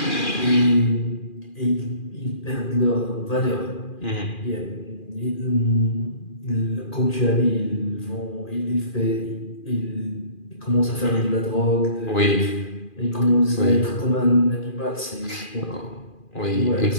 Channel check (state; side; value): late; right; 2.4 ms